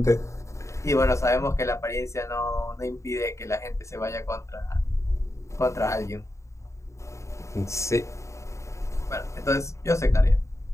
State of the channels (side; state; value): right; late; 0.14 ms